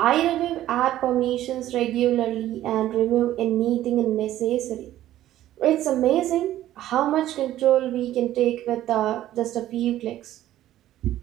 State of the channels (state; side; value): quieter; left; 13.4 dB